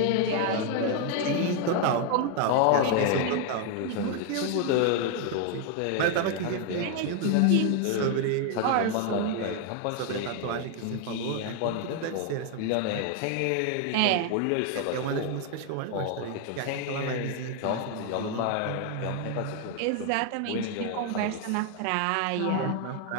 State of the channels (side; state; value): both; different; correlation 0.00